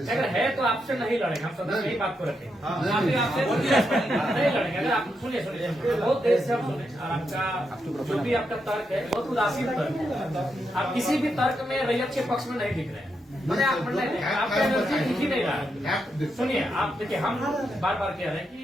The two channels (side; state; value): both; normal; correlation 0.82